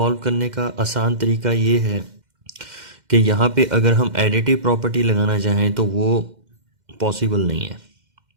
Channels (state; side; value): late; left; 2.1 ms